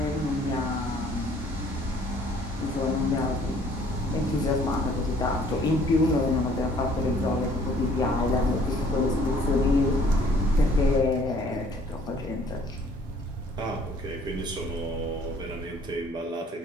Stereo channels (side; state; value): both; normal; correlation 0.58